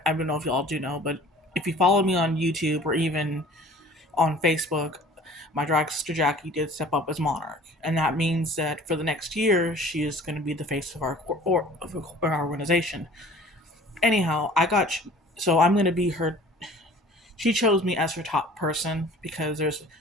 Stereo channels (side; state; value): both; normal; correlation 0.48